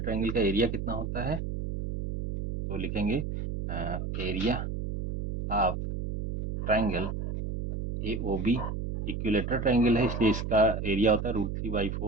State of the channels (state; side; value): noise; right; hum, 4 dB below the sound